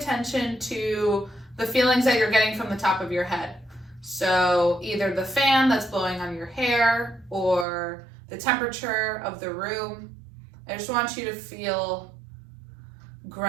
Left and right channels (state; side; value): drops out; left; at 7.7 s